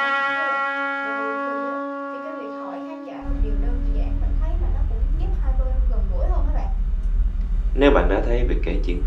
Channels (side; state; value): both; identical; correlation 1.00